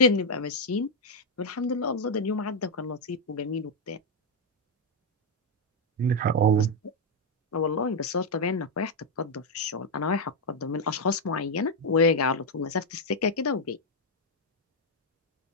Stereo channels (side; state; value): both; normal; correlation 0.01